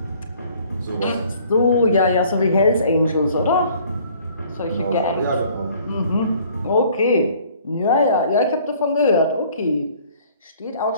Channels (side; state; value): both; inverted; correlation -0.56